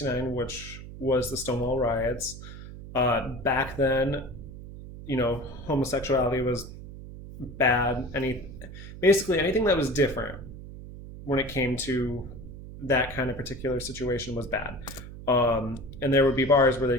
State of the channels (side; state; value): right; noise; hum, 13 dB below the sound